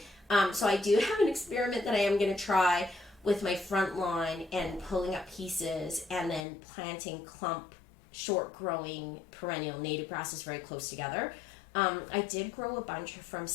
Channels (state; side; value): drops out; right; at 6.5 s